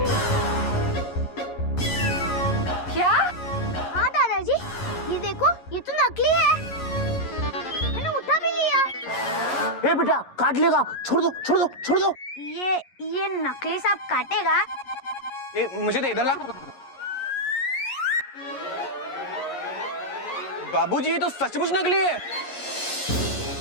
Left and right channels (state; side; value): late; right; 11 ms